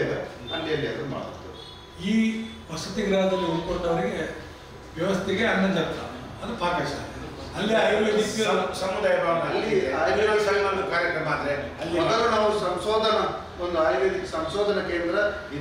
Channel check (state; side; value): identical; both; correlation 1.00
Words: ಅಲ್ಲಿ ಅದು ಮಾಡುತ್ತೆ. ಈ ವಸತಿ ಗೃಹದಲ್ಲಿ ಉಳ್ಕೊಂಡವರಿಗೆ ವ್ಯವಸ್ಥೆಗೆ ಅನ್ನ ಛತ್ರ, ಅದು ಪಾಕಶಾಲೆ. ಅಲ್ಲಿ ಆಯುರ್ವೇದಿಕ್ ಸಮುದಾಯ ಅಲ್ಲಿ ಆಯುರ್ವೇದಿಕ್ ಕಾರ್ಯಕ್ರಮ ಆದರೆ ಅಲ್ಲಿ ಮೊದಲು ನಾವು ಒಂದು ಆಯುರ್ವೇದಿಕ್ ಸಂಶೋಧನಾ ಕೇಂದ್ರ